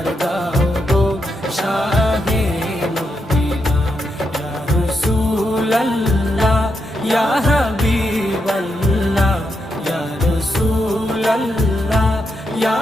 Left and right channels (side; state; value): both; normal; correlation 0.83